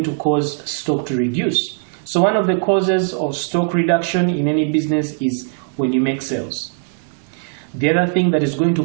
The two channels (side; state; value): left; silent; 66 dB below the other